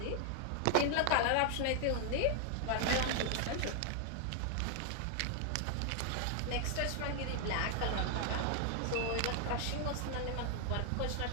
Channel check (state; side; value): different; both; correlation 0.00